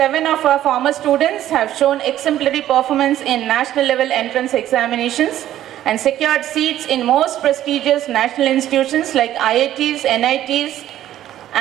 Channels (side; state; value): left; quieter; 12.6 dB